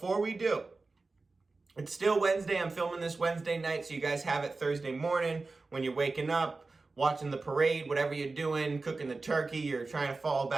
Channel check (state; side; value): quieter; left; 3.7 dB